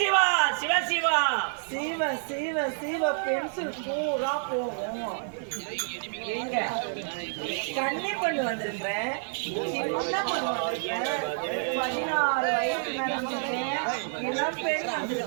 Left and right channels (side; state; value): left; silent; 59 dB below the other